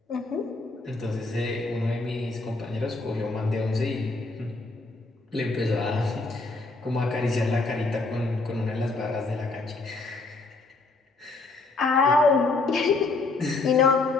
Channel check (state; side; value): quieter; right; 3.5 dB